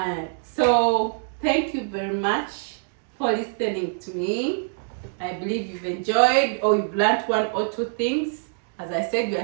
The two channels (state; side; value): silent; left; digital silence